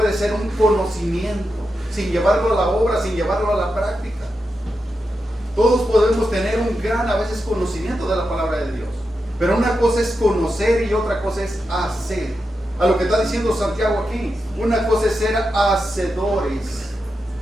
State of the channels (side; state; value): both; normal; correlation 0.88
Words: ser un conocimiento sin llevarlo a la obra, sin llevarlo a la práctica. Todos podemos tener un gran a veces conocimiento de la palabra de Dios, pero una cosa es conocer y otra cosa es hacer. A lo que está diciendo Santiago aquí, una cosa es ser hacedores